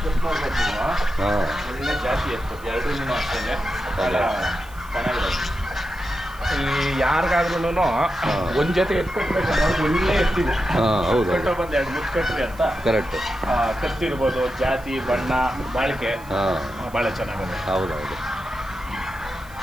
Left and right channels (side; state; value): right; noise; hiss, 23 dB below the sound